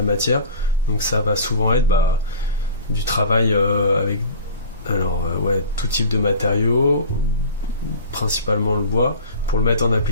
matière. Donc ça va souvent être du travail avec tout type de matériaux, principalement le bois, pour le mettre en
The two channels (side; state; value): both; inverted; correlation -0.39